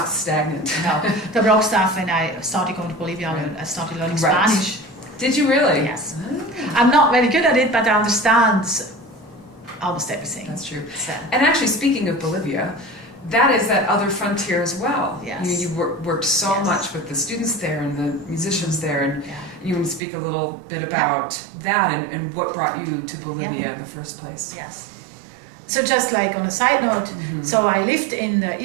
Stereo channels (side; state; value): left; drops out; at 20.0 s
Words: stagnant. No, the Baroque stuff. When I started going to Bolivia, I started learning Spanish. Did you really? Yes. I'm not very good at it, but I understand almost everything. That's true. So. And actually, speaking of Bolivia, that is that other frontier as well. Yes. You worked so Yes. much with the students there and the musicians there, and Yeah. you want to speak a little bit about that and what brought you to Bolivia in the first place. Yes. So just like on a side note, so I lived in the